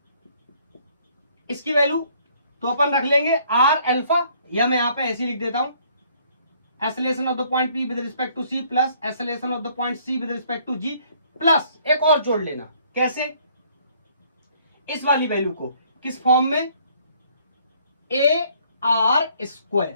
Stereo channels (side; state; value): both; inverted; correlation -0.62